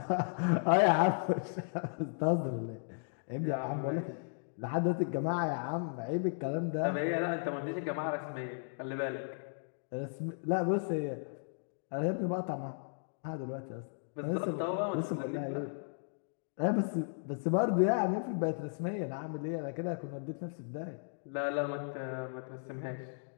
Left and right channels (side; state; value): right; silent; digital silence